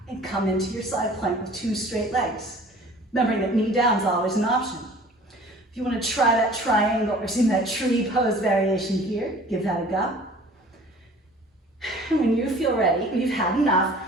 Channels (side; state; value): both; normal; correlation 0.48